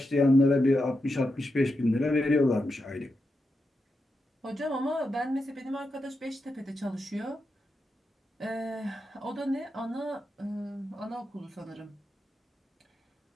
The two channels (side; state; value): both; normal; correlation 0.87